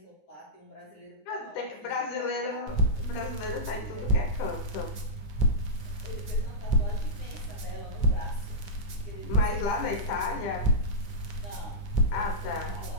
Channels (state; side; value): late; right; 9.3 ms